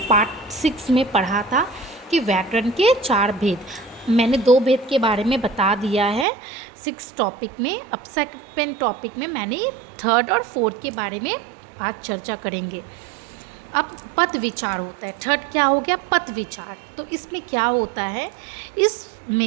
पार्ट 6 में पढ़ा था कि व्याकरण के 4 भेद। मैंने 2 भेद के बारे में बता दिया है 6 टॉपिक में। अब सेकंड टॉपिक में मैंने 3rd और 4th के बारे में आज चर्चा करेंगे। अब पद विचार होता है। 3rd क्या हो गया? पद विचार। तो इसमें क्या होता है?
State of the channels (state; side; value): drops out; left; at 6.2 s